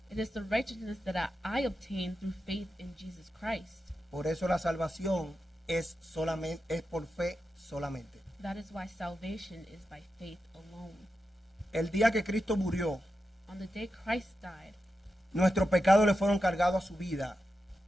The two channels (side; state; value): both; normal; correlation 0.89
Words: It is the righteousness that I obtain through faith in Jesus Christ. Por eso la salvación es por fe solamente. That is why salvation is by faith alone. El día que Cristo murió, On the day Christ died, nuestros pecados le fueron cargados a su vida